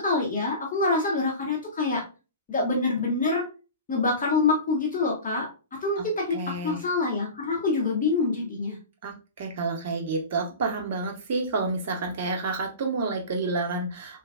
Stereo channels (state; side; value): inverted; both; correlation -0.32